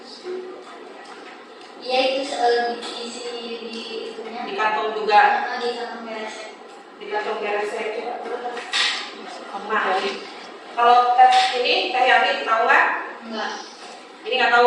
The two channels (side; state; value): both; identical; correlation 1.00